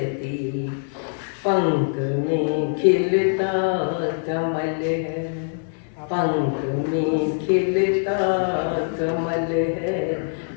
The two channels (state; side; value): silent; right; 63 dB below the other